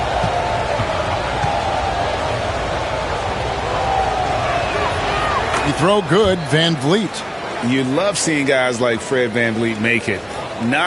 Throw good, VanVleet. You love seeing guys like Fred VanVleet make it.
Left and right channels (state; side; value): identical; both; correlation 1.00